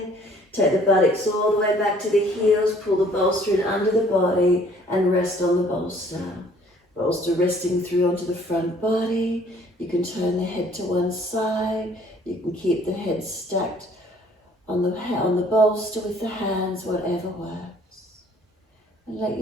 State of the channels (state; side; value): normal; both; correlation 0.58